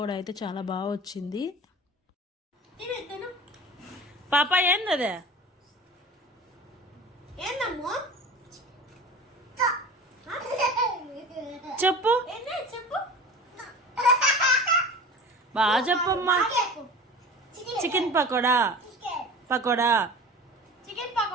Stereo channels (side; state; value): both; normal; correlation 0.37